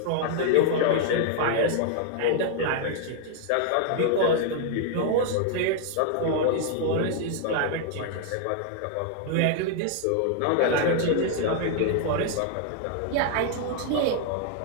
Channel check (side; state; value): both; different; correlation 0.00